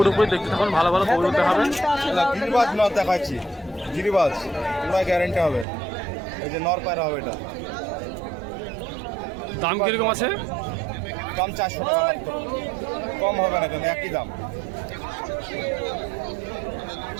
দেখতে থাকুন, ভালো ভালো কবুতর দেখাবেন। গিরিবাজ নর দেখাচ্ছি, গিরিবাজ পুরো গ্যারেন্টি হবে। এই যে নর পায়রা হবে এটা। দাম কিরকম আছে? দাম 400 টাকা মাত্র, কম হবে না, কিন্তু একই দাম।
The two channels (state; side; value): drops out; left; at 5.7 s